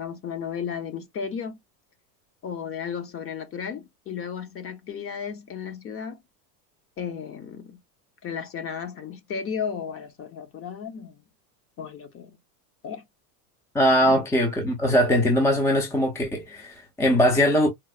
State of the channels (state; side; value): normal; both; correlation 0.46